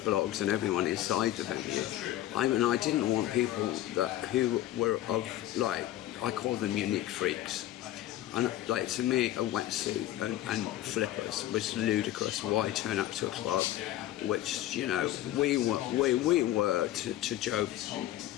and everyone inside the venue. I didn't want people who were of, like, I call them unique freaks. And like, to me, a wetsuit and flippers was ludicrous. Why turn up to a club, which, you know, we were to Joe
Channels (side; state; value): right; quieter; 13.9 dB